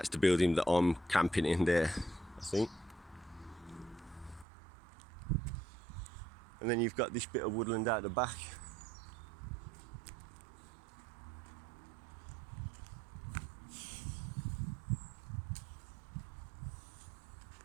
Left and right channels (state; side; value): drops out; left; at 4.5 s